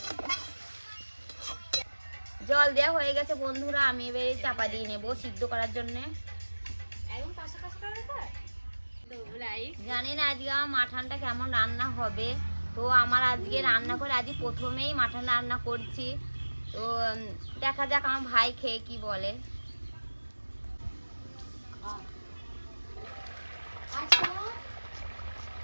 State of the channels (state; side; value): inverted; both; correlation -1.00